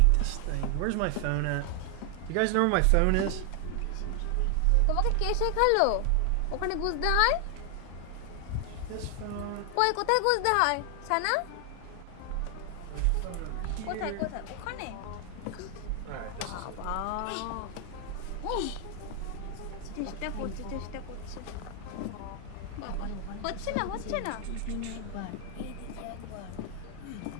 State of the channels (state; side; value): different; both; correlation 0.00